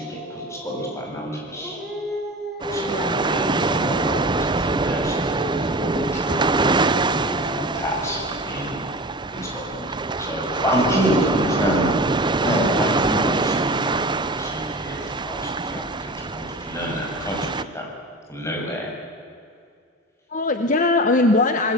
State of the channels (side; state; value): both; normal; correlation 0.32